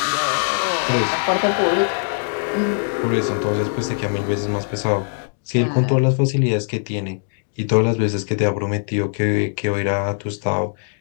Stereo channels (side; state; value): right; silent; digital silence